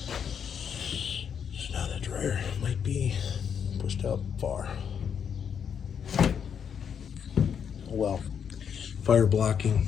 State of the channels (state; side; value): quieter; right; 7.6 dB